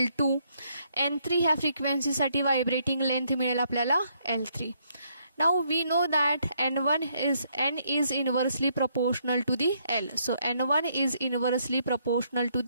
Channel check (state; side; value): inverted; both; correlation -0.72